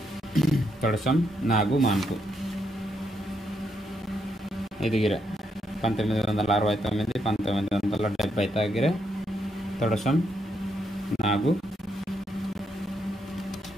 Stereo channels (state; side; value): normal; both; correlation 0.78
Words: తొడసం నాగు మాన్కు ఎదిగిరే 1969 1970 దగ్గరే తొడసం నాగు